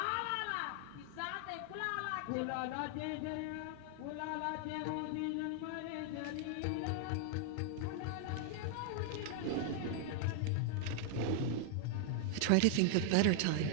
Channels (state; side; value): different; both; correlation 0.00